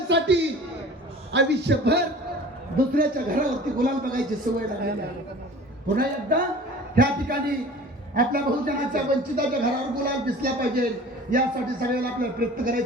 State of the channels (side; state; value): both; normal; correlation 0.43